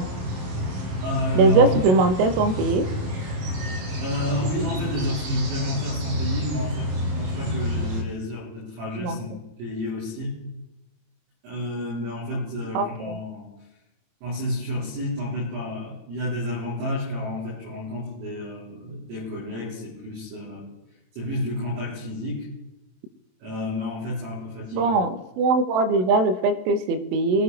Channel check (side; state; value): left; late; 27 ms